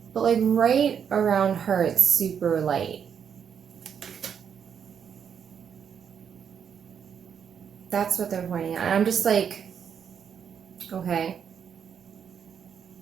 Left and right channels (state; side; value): quieter; left; 7.6 dB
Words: But like right around her it's super light. That's what they're pointing at. And I'm just like, okay.